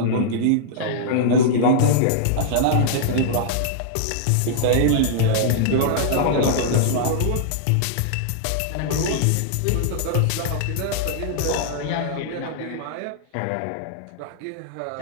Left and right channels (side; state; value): both; different; correlation -0.01